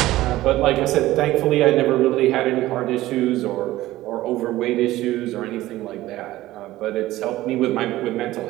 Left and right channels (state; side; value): quieter; left; 16.2 dB